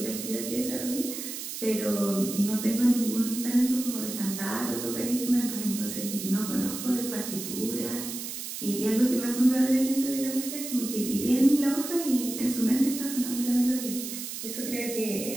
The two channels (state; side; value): noise; right; hiss, 7 dB below the sound